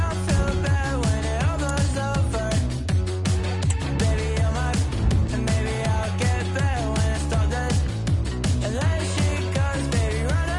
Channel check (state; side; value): identical; both; correlation 1.00